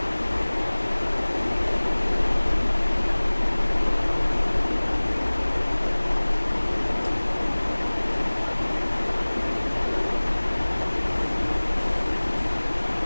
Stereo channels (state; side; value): inverted; both; correlation -1.00